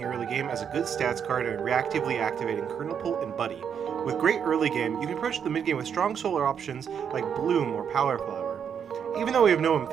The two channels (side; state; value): left; quieter; 7.7 dB